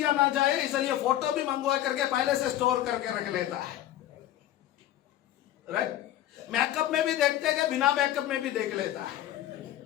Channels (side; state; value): right; quieter; 12.9 dB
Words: ना जाए, इसलिए फोटो भी मंगवा करके पहले से स्टोर करके रख लेता है। राइट? मेकअप में भी देखते हैं, बिना मेकअप में भी देख लेता है।